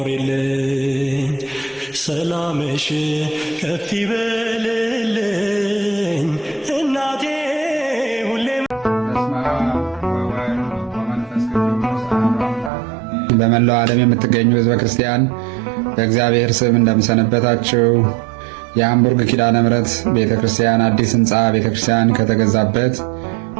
ሰላምሽ ከፍ ይበልልኝ እናቴ ሁሌም በመላው ዓለም የምትገኙ ሕዝበ ክርስቲያን በእግዚአብሔር ስም እንደምሰነበታችሁ። የሃምቡርግ ኪዳነ ምሕረት ቤተክርስቲያን አዲስ ሕንፃ ቤተክርስቲያን ከተገዛበት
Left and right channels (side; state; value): left; drops out; at 12.7 s